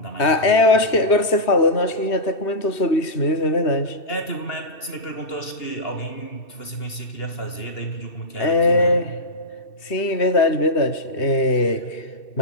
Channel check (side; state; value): right; late; 2.7 ms